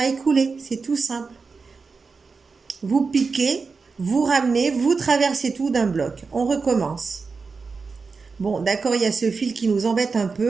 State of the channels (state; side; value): quieter; left; 4.7 dB